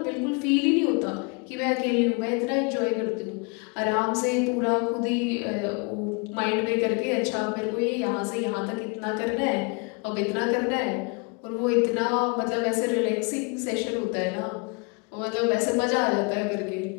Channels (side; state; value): right; quieter; 32.0 dB